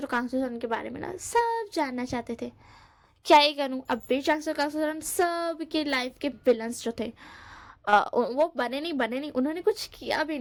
और कांगसो के बारे में ना सब जानना चाहते थे। क्या ही करूँ, अब भी चांगसो कांगसो सब के लाइफ के विलन्स जो थे वो बने नहीं, उन्होंने कुछ किया भी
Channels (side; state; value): both; identical; correlation 1.00